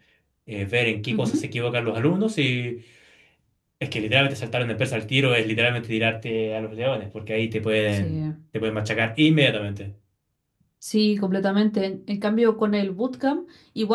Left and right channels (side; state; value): both; identical; correlation 1.00